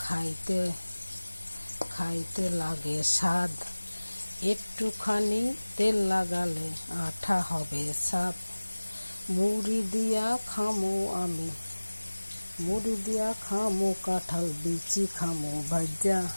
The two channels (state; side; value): inverted; both; correlation -1.00